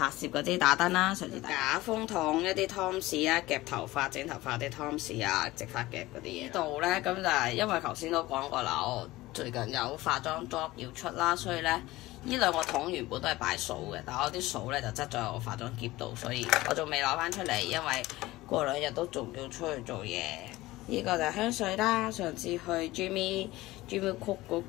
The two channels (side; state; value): right; quieter; 18.5 dB